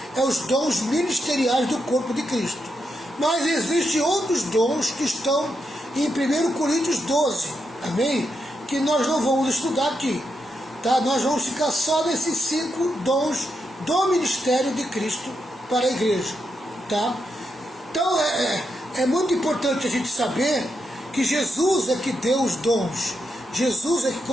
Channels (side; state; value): both; normal; correlation 0.83